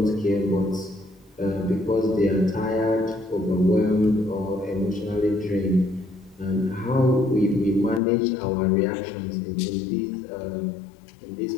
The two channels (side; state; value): right; drops out; at 8.0 s